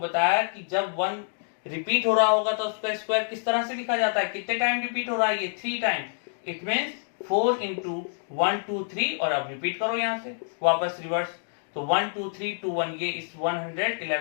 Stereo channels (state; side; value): silent; right; digital silence